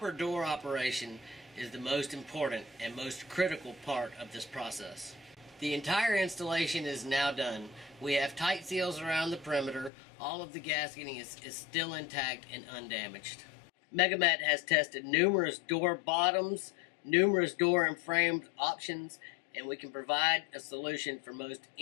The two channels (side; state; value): right; drops out; at 9.9 s